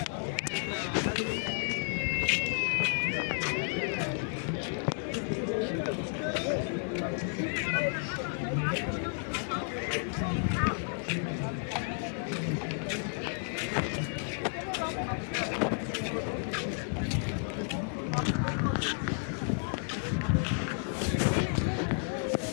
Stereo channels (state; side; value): silent; right; 56 dB below the other